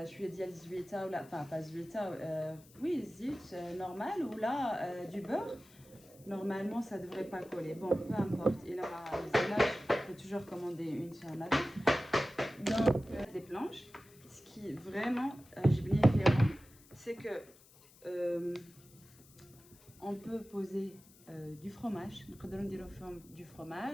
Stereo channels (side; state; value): left; noise; hiss, 25 dB below the sound